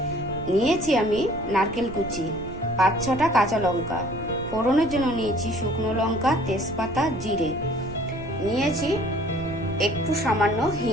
নিয়েছি আমি নারকেল কুচি, 5-6টা কাঁচা লঙ্কা, ফোড়নের জন্য নিয়েছি শুকনো লঙ্কা, তেজপাতা, জিরে, নিয়েছি একটু সামান্য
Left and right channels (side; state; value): right; noise; rumble, 13 dB below the sound